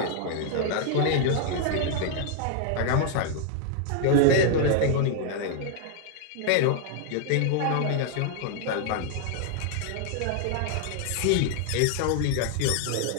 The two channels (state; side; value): different; both; correlation 0.00